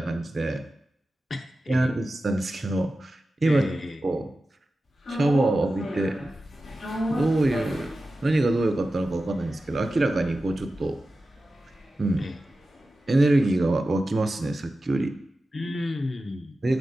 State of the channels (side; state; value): both; normal; correlation 0.93